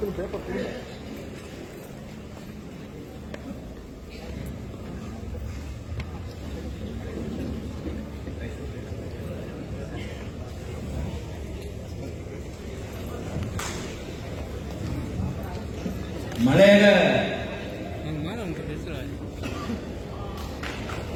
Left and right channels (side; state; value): both; identical; correlation 1.00